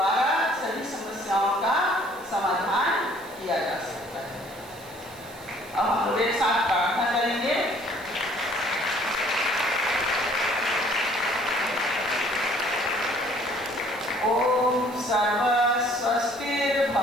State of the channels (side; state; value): right; noise; hiss, 21 dB below the sound